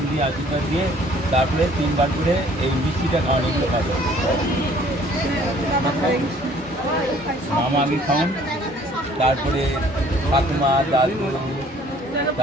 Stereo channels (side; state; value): both; normal; correlation 0.57